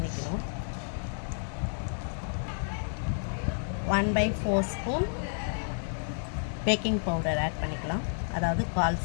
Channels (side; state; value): right; silent; 57 dB below the other